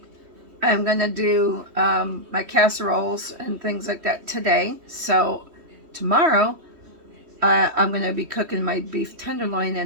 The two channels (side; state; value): left; late; 3.2 ms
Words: I'm gonna do my casseroles and things like that today. So tomorrow, I'm gonna be cooking my beef tenderloin